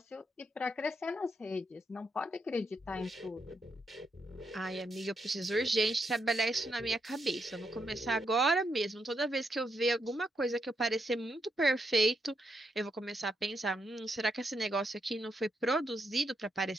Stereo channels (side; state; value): both; normal; correlation 0.80